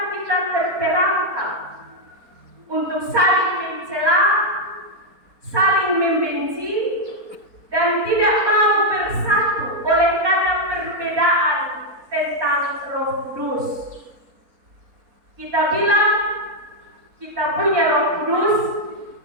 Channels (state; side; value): late; left; 4.2 ms